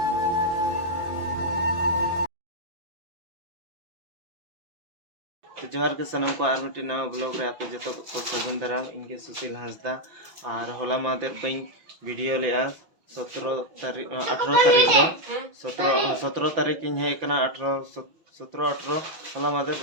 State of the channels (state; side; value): late; left; 6.0 ms